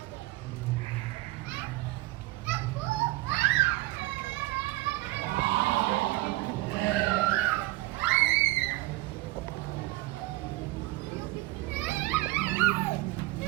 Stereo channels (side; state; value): left; quieter; 19.1 dB